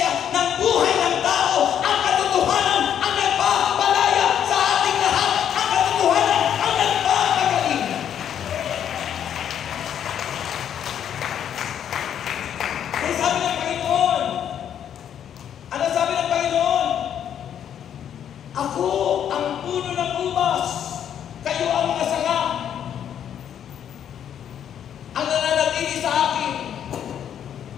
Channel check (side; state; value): right; quieter; 9.4 dB